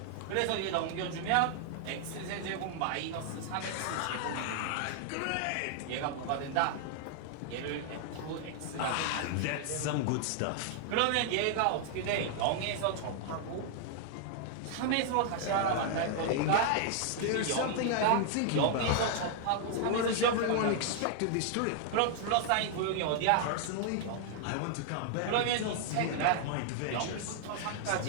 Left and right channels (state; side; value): different; both; correlation 0.00